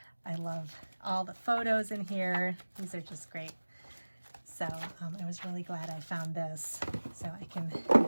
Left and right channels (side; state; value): both; inverted; correlation -1.00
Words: I love all the photos in here. These are just great. So I was really glad I found this, so I can